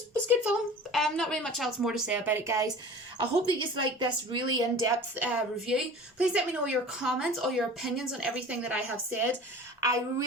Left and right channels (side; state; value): both; normal; correlation 0.40